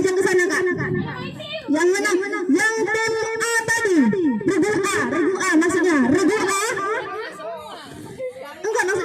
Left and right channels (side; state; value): both; identical; correlation 1.00